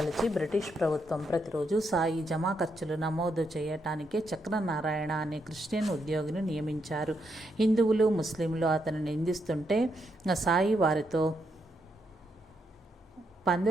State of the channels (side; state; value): both; normal; correlation 0.79